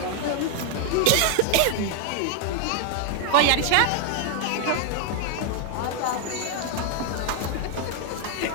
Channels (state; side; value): different; both; correlation 0.00